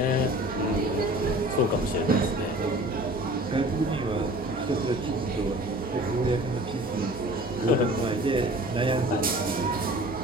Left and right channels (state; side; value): normal; both; correlation 0.45